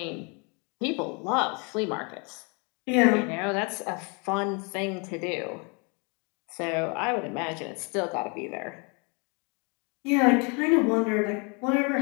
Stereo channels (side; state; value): right; quieter; 33.0 dB